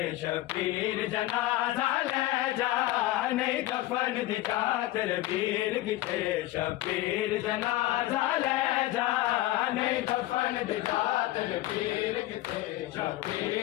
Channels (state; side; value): quieter; right; 16.4 dB